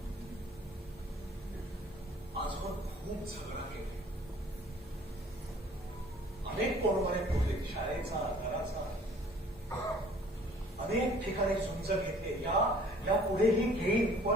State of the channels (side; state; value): both; normal; correlation 0.54